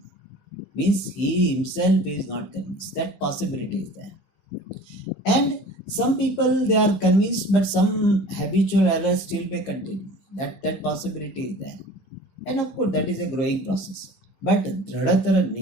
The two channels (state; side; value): late; right; 15 ms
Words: Means he himself is not convinced. That possibility is there. And some people, they are convinced, but some habitual errors still may continue. That possibility is there. And of course, that is a growing process. But Dradhatara